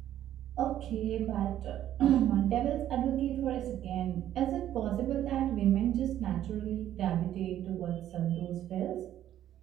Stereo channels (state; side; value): quieter; left; 11.8 dB